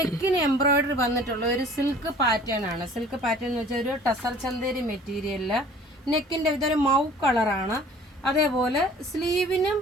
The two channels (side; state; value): both; normal; correlation 0.49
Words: എംബ്രോയിഡറി വന്നിട്ടുള്ള ഒരു സിൽക്ക് പാറ്റേൺ ആണ്. സിൽക്ക് പാറ്റേൺ എന്ന് വെച്ചാൽ ഒരു ടസർ ചന്തേരി മെറ്റീരിയലിൽ നെക്കിൻ്റെ ഇതൊരു മൗ കളറാണ്. അതേപോലെ സ്ലീവിനും